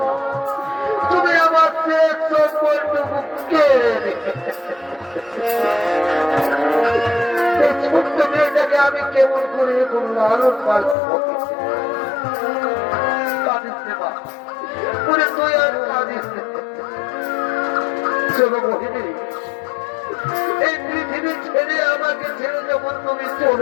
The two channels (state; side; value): drops out; right; at 11.0 s